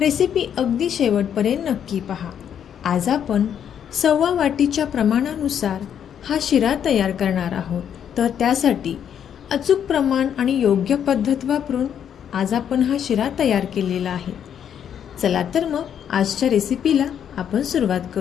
अगदी शेवटपर्यंत नक्की पहा। आज आपण 1/4 वाटीच्या प्रमाणानुसार हा शिरा तयार करणार आहोत। तर त्यासाठी अचूक प्रमाण आणि योग्य पद्धत वापरून आज आपण हा शिरा तयार केलेला आहे। चला तर मग आजच्या रेसिपीला आपण सुरुवात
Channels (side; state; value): right; quieter; 8.8 dB